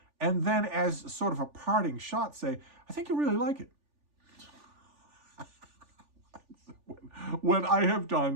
and then as sort of a parting shot say, I think you'll really like it. When I have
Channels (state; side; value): late; left; 3.4 ms